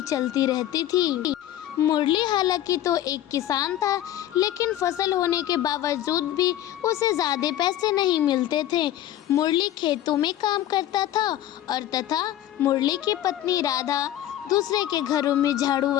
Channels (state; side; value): quieter; right; 12.6 dB